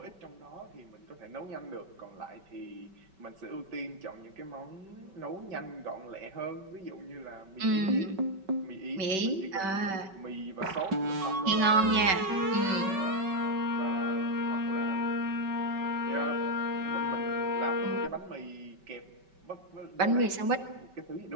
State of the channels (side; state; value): left; late; 5.2 ms